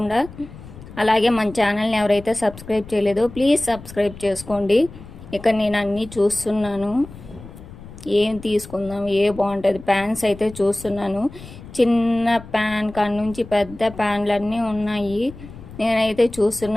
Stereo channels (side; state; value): left; noise; rumble, 16 dB below the sound